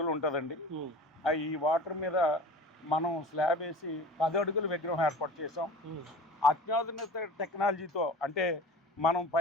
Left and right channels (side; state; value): both; normal; correlation 0.37